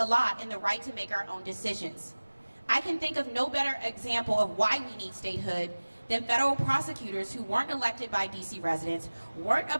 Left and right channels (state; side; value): inverted; both; correlation -1.00